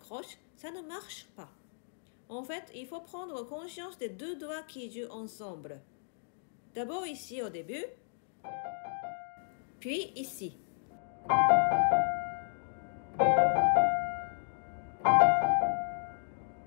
ça ne marche pas. En fait, il faut prendre conscience des deux doigts qui jouent ensemble. D'abord ici au début, puis ici.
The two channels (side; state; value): right; silent; digital silence